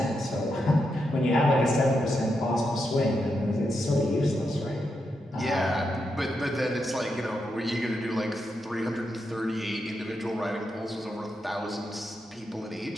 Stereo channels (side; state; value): both; normal; correlation 0.84